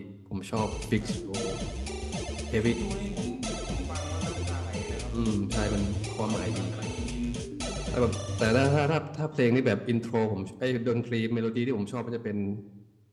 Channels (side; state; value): both; identical; correlation 1.00